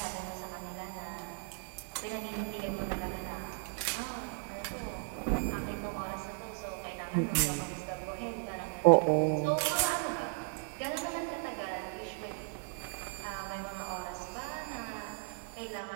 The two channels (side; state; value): left; silent; digital silence